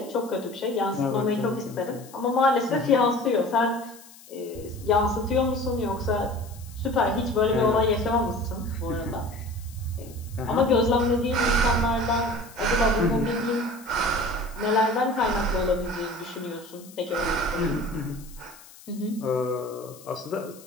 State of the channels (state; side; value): noise; left; hiss, 21 dB below the sound